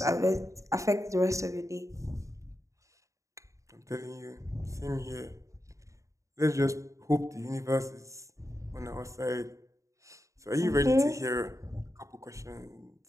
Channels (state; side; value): late; left; 0.15 ms